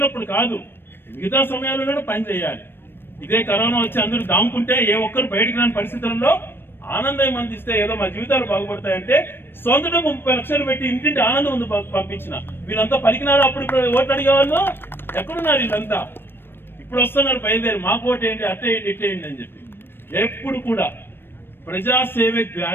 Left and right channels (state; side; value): late; right; 0.10 ms